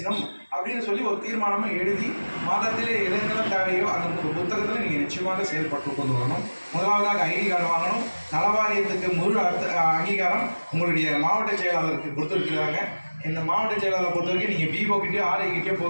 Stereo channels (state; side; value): inverted; both; correlation -1.00